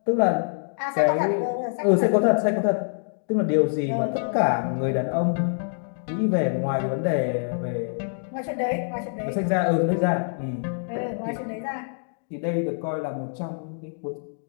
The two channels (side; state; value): right; silent; digital silence